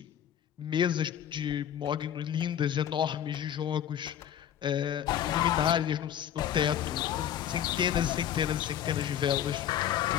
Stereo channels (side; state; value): right; quieter; 10.1 dB